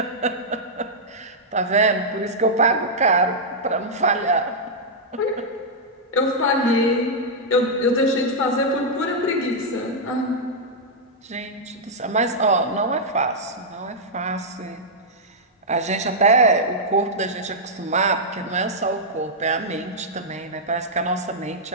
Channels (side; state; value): both; normal; correlation -0.07